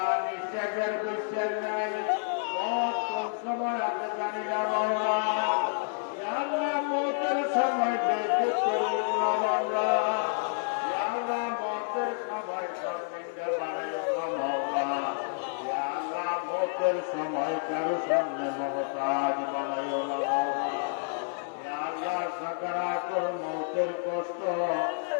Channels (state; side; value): silent; right; digital silence